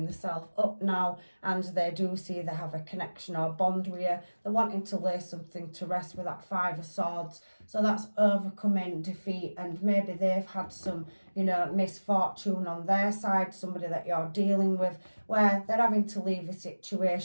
themselves up now, and they do see they have a connection or bond with you. They're wanting to lay something to rest with that Five of Swords. So that's overcoming defeat, and maybe they've had some, you know, misfortune on their side, somebody that you're dealing with, where they're having to leave a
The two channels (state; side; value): inverted; both; correlation -1.00